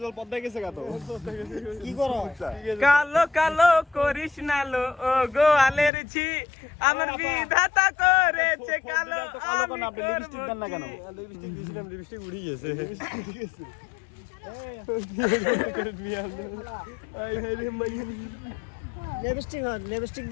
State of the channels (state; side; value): drops out; right; at 5.9 s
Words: জল পদ্মায় গেছে কত কি করো কালো কালো করিস না লো ও গোয়ালের ঝি আমার বিধাতা করেছে কালো আমি আপনি লিপস্টিক দেন না কেন লিপস্টিক দিয়েছিলাম লিপস্টিক উড়ে গেছে লিপস্টিক